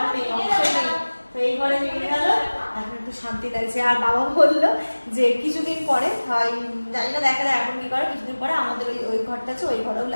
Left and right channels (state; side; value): inverted; both; correlation -1.00